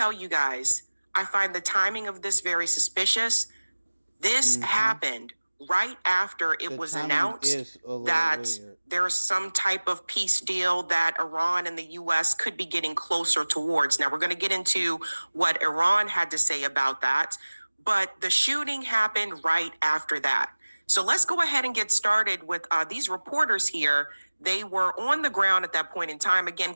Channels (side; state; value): both; inverted; correlation -1.00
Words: you guys, I find the timing of this very suspicious. This happened right after it was announced that there's some type of peace deal that Iran and the U.S. could be getting closer towards. Now, we're going to get into what Iran had to say about that, but the shooting happened right after that. So let's go ahead and get started with these reporters here. They were on the ground at that point in time, again,